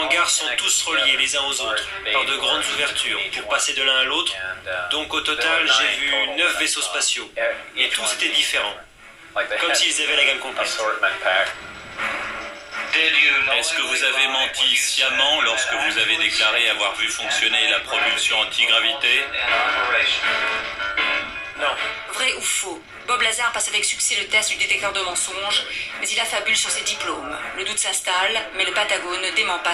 sont tous reliés les uns aux autres par de grandes ouvertures pour passer de l'un à l'autre. Donc au total, j'ai vu 9 vaisseaux spatiaux. Et tous étaient différents. Comme s'ils avaient la gamme complète. Est-ce que vous avez menti sciemment lorsque vous avez déclaré avoir vu fonctionner la propulsion antigravité? Non. Vrai ou faux? Bob Lazar passe avec succès le test du détecteur de mensonges, mais il affabule sur ses diplômes. Le doute s'installe, mais le Patagone ne dément pas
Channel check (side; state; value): both; identical; correlation 1.00